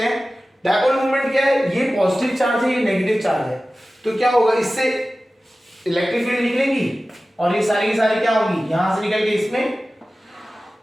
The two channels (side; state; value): both; normal; correlation 0.96